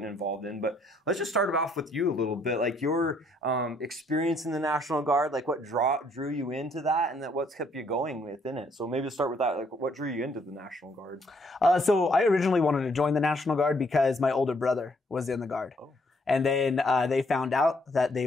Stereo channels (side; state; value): both; normal; correlation 0.68